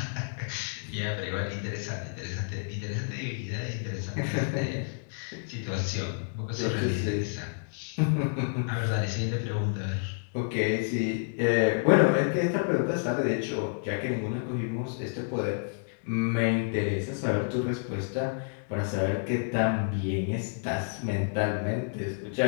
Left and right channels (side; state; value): right; silent; digital silence